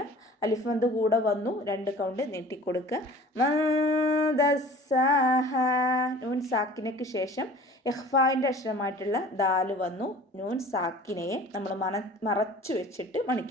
അലിഫ് മദ് കൂടെ വന്നു, 2 കൗണ്ട് നീട്ടിക്കൊടുക്കുക. ദസ്സാഹ, നൂൻ സാക്കിനയ്ക്ക് ശേഷം ഇഖ്ഫായിൻ്റെ അക്ഷരമായിട്ടുള്ള ദാല് വന്നു. നൂൻ സാക്കിനയെ നമ്മൾ മറച്ചു വെച്ചിട്ട്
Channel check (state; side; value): normal; both; correlation 0.45